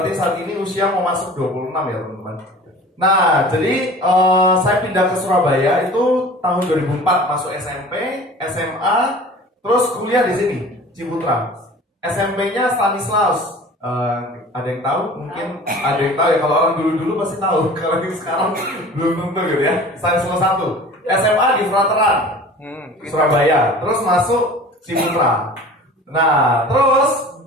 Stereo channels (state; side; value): normal; both; correlation 0.42